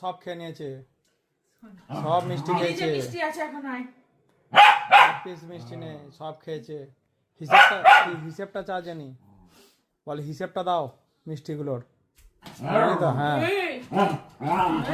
সব খেয়ে নিয়েছে। সব মিষ্টি খেয়েছে। 4 পিস মিষ্টি নেই, সব খেয়েছে। হিসেবটা চা জানি, বল হিসেবটা দাও মিষ্টিগুলোর। তো হ্যাঁ,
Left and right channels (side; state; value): both; identical; correlation 1.00